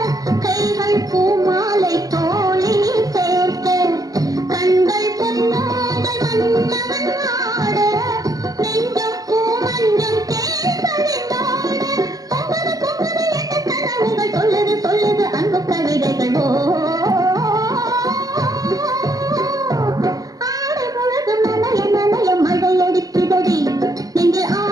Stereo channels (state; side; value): late; left; 0.18 ms